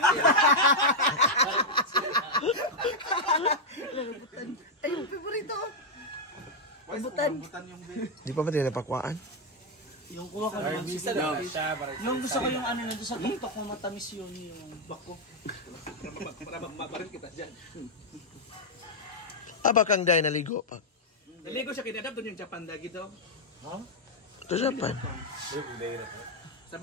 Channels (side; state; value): both; normal; correlation 0.00